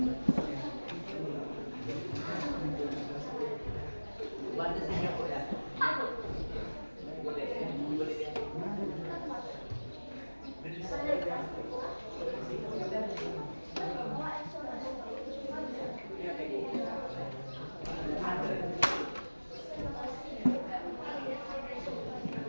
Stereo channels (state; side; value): inverted; both; correlation -1.00